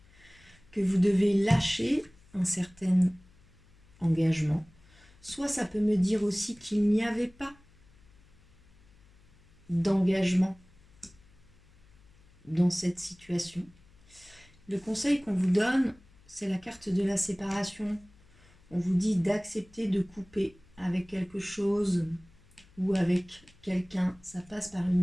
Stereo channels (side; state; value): left; noise; hum, 28 dB below the sound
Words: que vous devez lâcher un certain engagement, soit ça peut me dire aussi qu'il n'y avait pas d'engagement dans cette situation. Le conseil qu'on vous donne, c'est la carte de la séparation. On vous dit d'accepter de couper avec quelque chose ou avec quelqu'un. Ça passe par